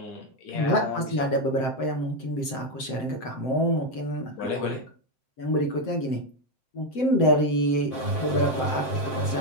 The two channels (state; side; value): late; right; 7.7 ms